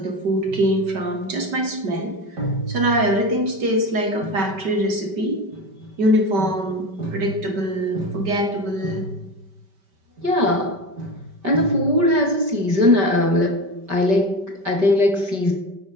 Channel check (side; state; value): left; late; 5.1 ms